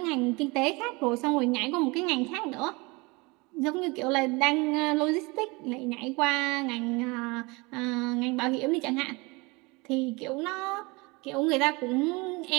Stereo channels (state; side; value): quieter; left; 26.1 dB